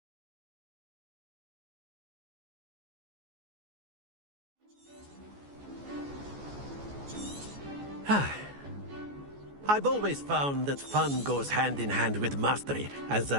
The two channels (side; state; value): left; late; 14 ms